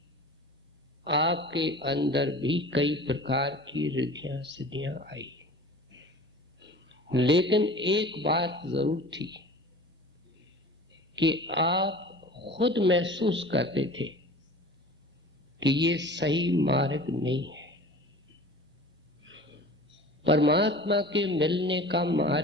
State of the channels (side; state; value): both; normal; correlation 0.40